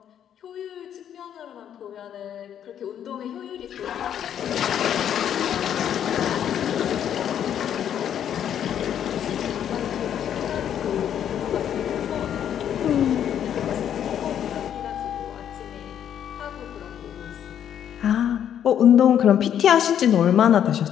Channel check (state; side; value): quieter; right; 9.6 dB